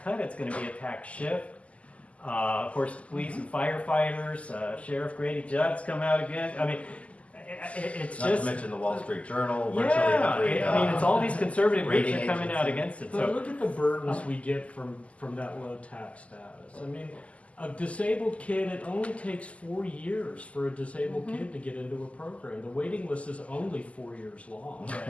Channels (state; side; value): late; right; 0.065 ms